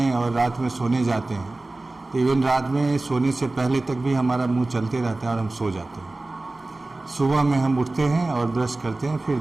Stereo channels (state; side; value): quieter; left; 3.0 dB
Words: और रात में सोने जाते हैं, तो इवन रात में सोने से पहले तक भी हमारा मुंह चलते रहता है और हम सो जाते हैं। सुबह में हम उठते हैं और ब्रश करते हैं, फिर